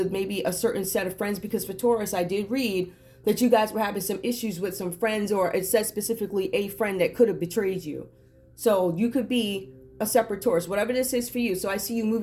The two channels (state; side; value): identical; both; correlation 1.00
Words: maybe a certain set of friends, because for Taurus, I did read that you guys were having some issues with some friends, or it says specifically a friend that could have betrayed you. So you could be a separate Taurus, whatever this is for you. So I see you